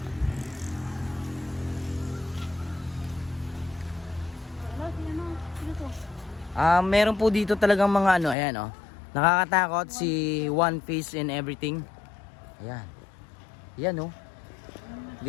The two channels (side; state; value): right; drops out; at 8.3 s